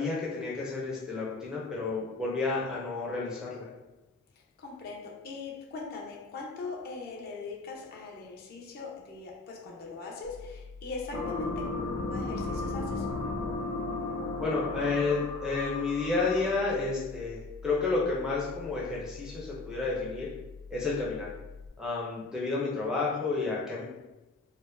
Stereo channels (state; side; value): quieter; right; 3.2 dB